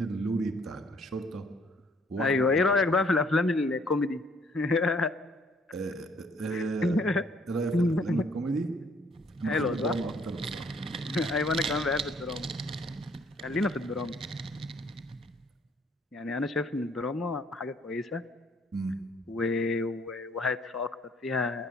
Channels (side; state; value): both; normal; correlation 0.63